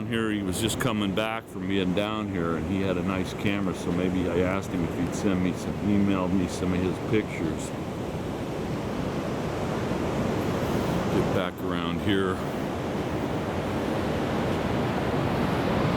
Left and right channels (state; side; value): identical; both; correlation 1.00